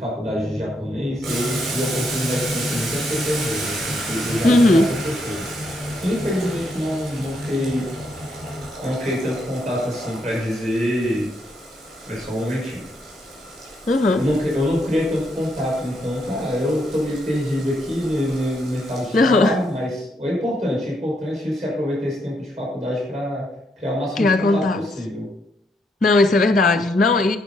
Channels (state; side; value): normal; both; correlation 0.76